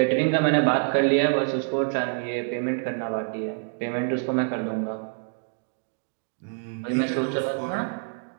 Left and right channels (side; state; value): left; silent; digital silence